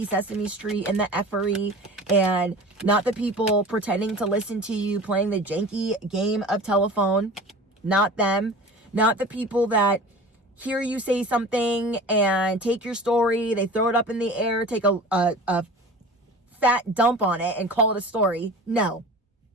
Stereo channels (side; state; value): both; normal; correlation 0.38